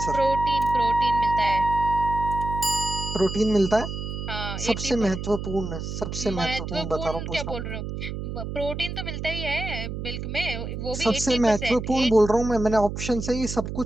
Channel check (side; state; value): right; noise; hum, 6 dB below the sound